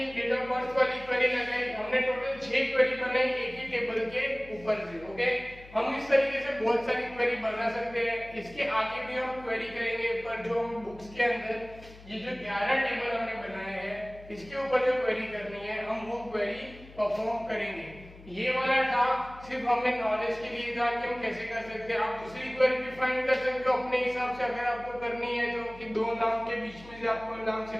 डेट ऑफ बर्थ वाली क्वेरी लगाई, हमने टोटल 6 क्वेरी बनाई एक ही टेबल के ऊपर से। ओके, हम इस तरीके से बहुत सारी क्वेरी बना सकते हैं। इसके आगे भी हम क्वेरी करेंगे, पर जो हम बुक्स के अंदर ये जो 11 टेबल हमने बनाए हैं इसके ऊपर जो क्वेरी करनी है हम वो क्वेरी परफॉर्म करेंगे। ये वाला था सिर्फ हमें नॉलेज के लिए था कि हम कैसे कर सकते हैं। आप दूसरी क्वेरी भी फाइंड कर सकते हो अपने हिसाब से, अगर आपको करनी है तो कि 2 नाम के बीच में से आप कोई नाम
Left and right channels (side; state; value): left; noise; hum, 20 dB below the sound